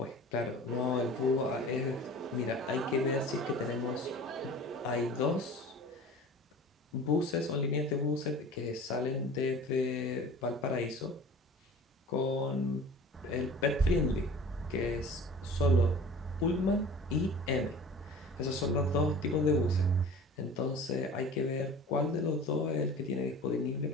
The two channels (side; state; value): both; normal; correlation 0.41